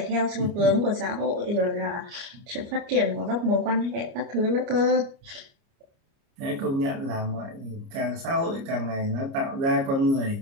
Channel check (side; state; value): left; late; 29 ms